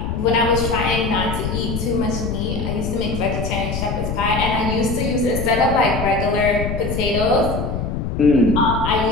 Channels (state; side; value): noise; left; rumble, 3 dB below the sound